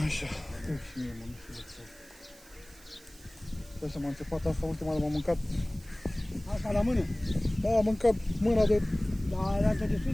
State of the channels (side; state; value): right; noise; hiss, 23 dB below the sound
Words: Așa. Și mie, mă, nu știu de ce. Așa m-a înțepat asta, ultima dată m-am mâncat. Asta la mână? Da, am mâncat mâna de... Da, altă de